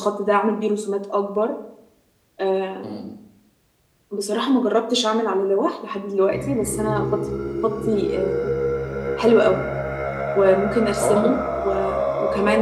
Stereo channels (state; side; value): identical; both; correlation 1.00